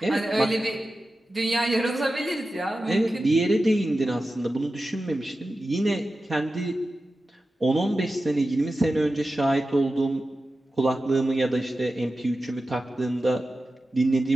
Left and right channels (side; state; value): both; normal; correlation 0.93